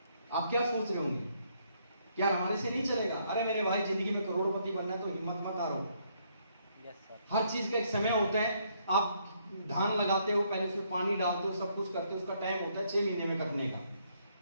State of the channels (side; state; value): both; inverted; correlation -0.71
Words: आप क्या सोच रहे होंगे, क्या हमारे से नहीं चलेगा? अरे मेरे भाई, जिंदगी में करोड़पति बनना है तो हिम्मत मत हारो। हर चीज का एक समय होता है। आप धान लगाते हो, पहले उसमें पानी डालते हो, सब कुछ करते हो, उसका टाइम होता है 6 महीने में कटने का।